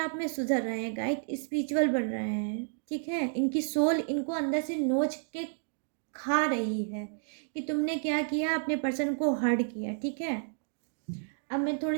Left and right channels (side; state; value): left; silent; digital silence